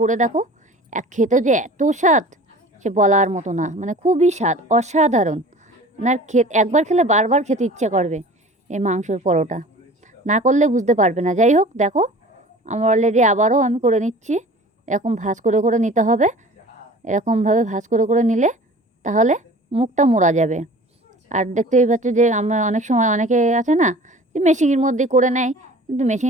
করে দেখো, খেতে যে এত স্বাদ সে বলার মতো না, মানে খুবই স্বাদ, অসাধারণ। আপনার একবার খেলে বারবার খেতে ইচ্ছে করবে এই মাংসর পরোটা, না করলে বুঝতে পারবে না। যাই হোক, দেখো আমার অলরেডি আবারও আমি করে নিচ্ছি। এরকম ভাঁজ করে করে নিতে হবে, এরকমভাবে ভাঁজ করে করে নিলে তাহলে মুখটা মোড়া যাবে। আর দেখতেই পাচ্ছ যে আমরা অনেক সময় অনেকে আছে না যে মেশিনের মধ্যে করে নেয়, কিন্তু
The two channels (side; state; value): both; normal; correlation 0.43